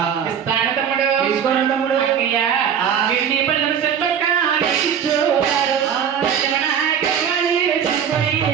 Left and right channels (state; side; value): quieter; left; 8.2 dB